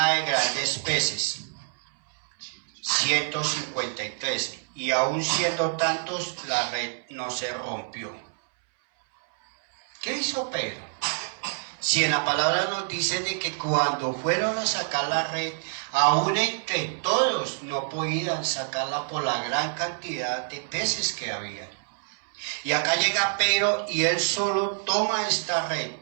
de grandes peces, 153, y aun siendo tantos, la red no se rompió. ¿Qué hizo Pedro? Si en la palabra nos dice de que cuando fueron a sacar la red, aún entre todos no podían sacarla por la gran cantidad de peces que había. Y acá llega Pedro y él solo toma esta red,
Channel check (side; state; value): left; silent; 60 dB below the other